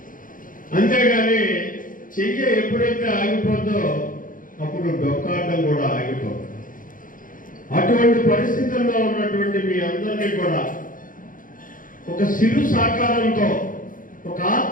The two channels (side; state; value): right; late; 0.39 ms